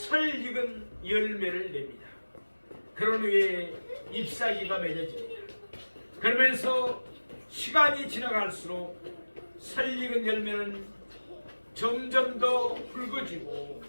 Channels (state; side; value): inverted; both; correlation -1.00